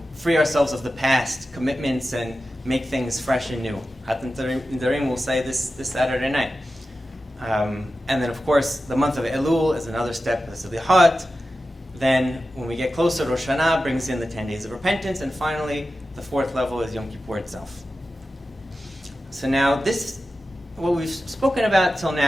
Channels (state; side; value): normal; both; correlation 0.93